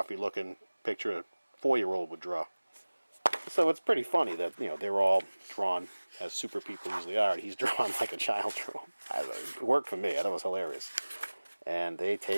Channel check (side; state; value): both; inverted; correlation -1.00